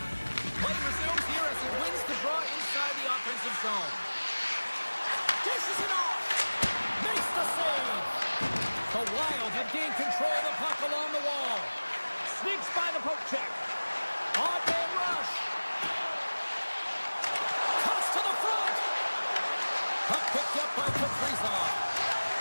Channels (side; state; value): both; inverted; correlation -1.00